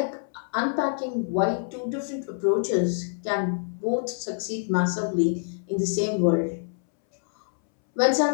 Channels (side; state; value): right; silent; 61 dB below the other